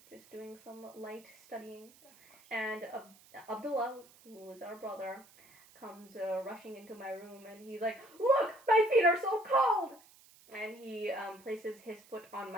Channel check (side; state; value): right; noise; hiss, 25 dB below the sound